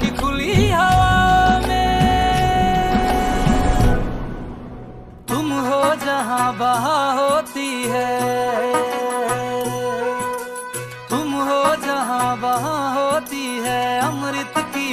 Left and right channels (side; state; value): both; identical; correlation 1.00